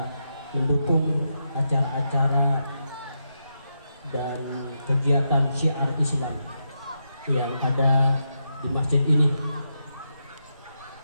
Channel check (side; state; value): both; inverted; correlation -0.84